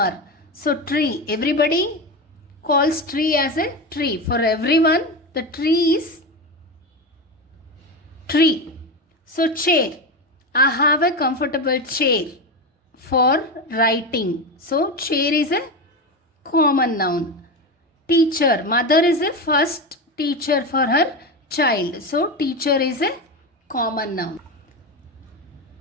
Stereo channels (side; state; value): both; normal; correlation 0.18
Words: So tree, everybody calls tree as a tree. For everyone, the tree is tree. So chair, I have a comfortable chair for writing. So chair is a common noun. Teacher, mother is a first teacher for her child. So teacher is a common noun.